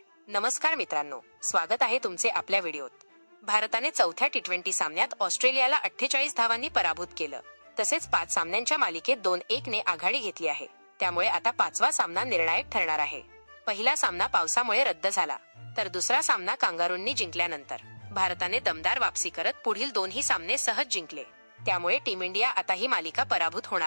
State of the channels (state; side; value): inverted; both; correlation -1.00